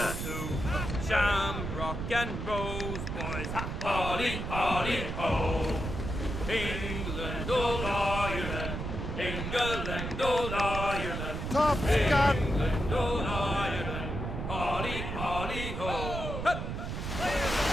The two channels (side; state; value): right; noise; rumble, 4 dB below the sound